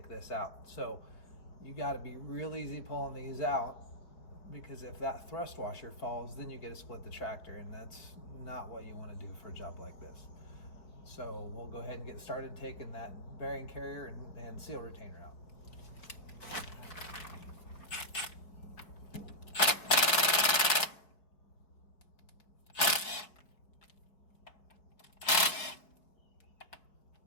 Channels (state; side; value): late; right; 4.7 ms